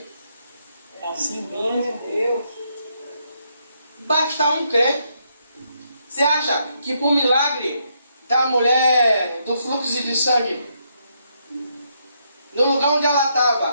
É assim mesmo, Deus. Basta um crer. Você acha que por milagre da mulher do fluxo de sangue, no lugar onde ela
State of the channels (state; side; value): inverted; both; correlation -0.76